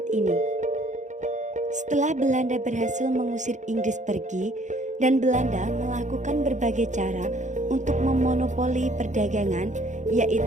ini. Setelah Belanda berhasil mengusir Inggris pergi, dan Belanda melakukan berbagai cara untuk memonopoli perdagangan,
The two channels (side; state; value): left; late; 0.35 ms